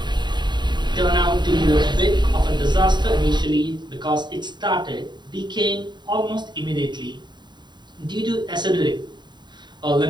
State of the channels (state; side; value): late; left; 0.21 ms